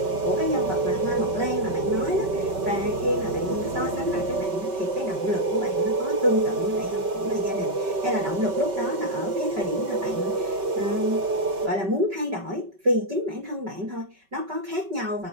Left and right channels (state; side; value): late; left; 5.2 ms